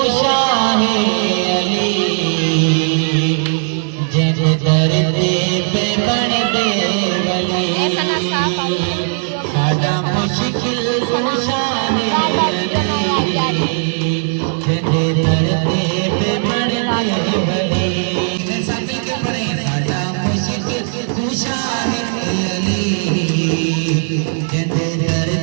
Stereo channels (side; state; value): left; silent; digital silence